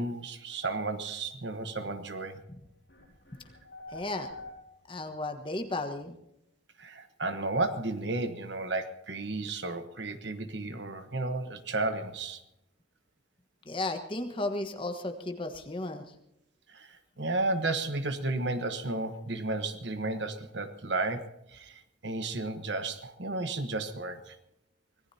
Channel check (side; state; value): both; normal; correlation 0.08